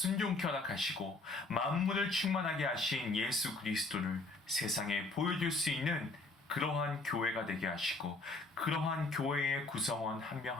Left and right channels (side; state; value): right; quieter; 3.3 dB